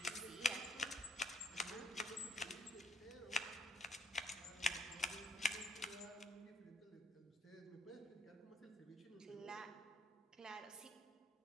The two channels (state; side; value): normal; both; correlation 0.67